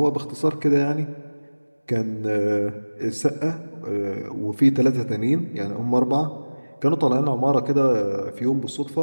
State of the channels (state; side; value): inverted; both; correlation -1.00